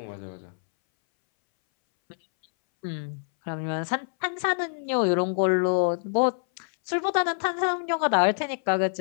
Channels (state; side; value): silent; right; 61 dB below the other